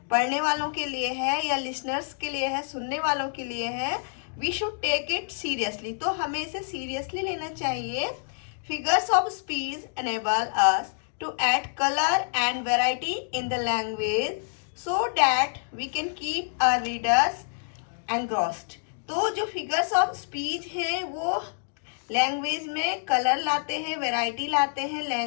पढ़ने वालों के लिए है या लिसनर्स के लिए है, सुनने वालों के लिए है, we should take it seriously, तो हमें इसे सीरियसली लेना चाहिए। Figures of speech enable us to add colour and variety in the language so that we can keep our readers engrossed। तो जो फिगर्स ऑफ स्पीच हैं वो लैंग्वेज में कलर लाते हैं, वैरायटी लाते हैं,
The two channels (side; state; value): right; silent; digital silence